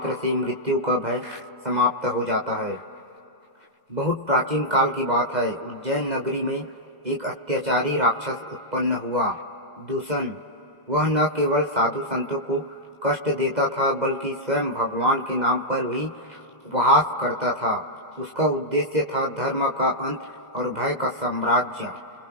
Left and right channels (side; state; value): left; late; 2.0 ms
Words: से मृत्यु का भय समाप्त हो जाता है। बहुत प्राचीन काल की बात है। उज्जैन नगरी में एक अत्याचारी राक्षस उत्पन्न हुआ, दूषण। वह न केवल साधु संतों को कष्ट देता था, बल्कि स्वयं भगवान के नाम पर भी उपहास करता था। उसका उद्देश्य था धर्म का अंत और भय का साम्राज्य।